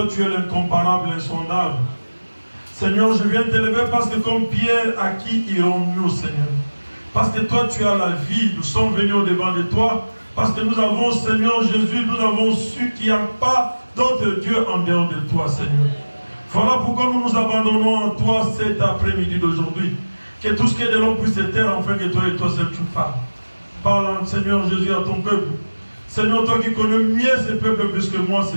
tu es l'incomparable, l'insondable. Seigneur, je viens t'élever parce que comme Pierre, à qui irons-nous, Seigneur? Parce que toi tu as la vie, nous sommes venus au devant de toi. Parce que nous avons, Seigneur Jésus, nous avons su qu'il n'y a pas d'autre Dieu en dehors de toi, Seigneur. Voilà pourquoi nous nous abandonnons en toi cet après-midi d'aujourd'hui. Que tout ce qui est de l'homme puisse se taire, afin que toi et toi seul tu parles. Parle, Seigneur Jésus, à ton peuple. Seigneur, toi qui connais mieux ce peuple plus que moi,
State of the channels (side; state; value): both; inverted; correlation -1.00